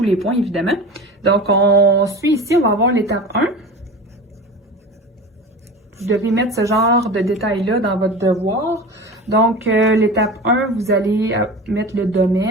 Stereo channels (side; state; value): both; normal; correlation 0.32